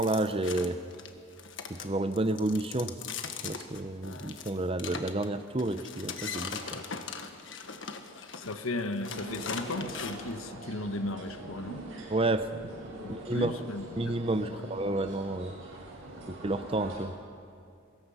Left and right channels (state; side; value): normal; both; correlation 0.50